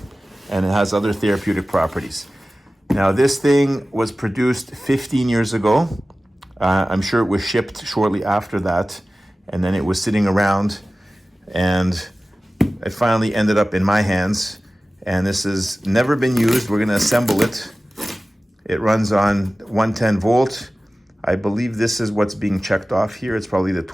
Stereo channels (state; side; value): normal; both; correlation 0.96